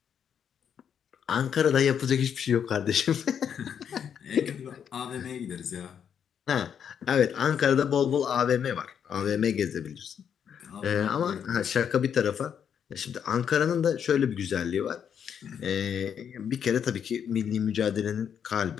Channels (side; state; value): right; quieter; 8.1 dB